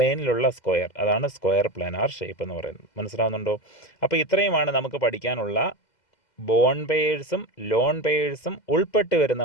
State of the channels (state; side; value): late; right; 2.0 ms